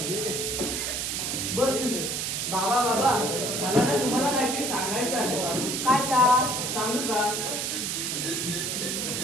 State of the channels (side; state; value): right; noise; hiss, 1 dB below the sound